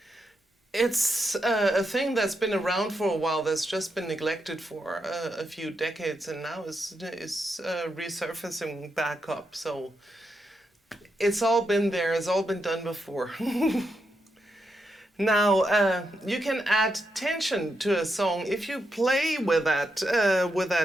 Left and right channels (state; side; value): normal; both; correlation 0.83